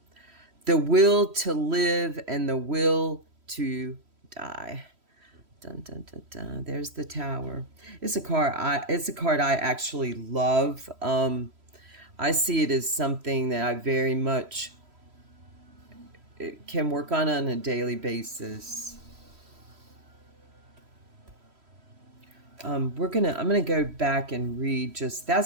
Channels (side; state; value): left; late; 3.1 ms